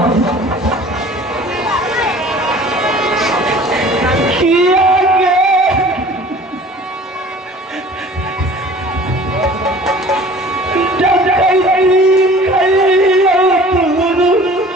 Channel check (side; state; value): both; normal; correlation 0.46